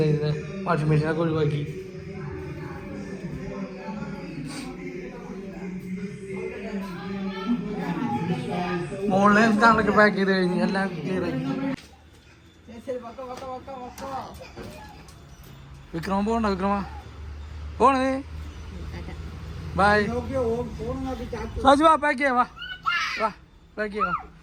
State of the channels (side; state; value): both; identical; correlation 1.00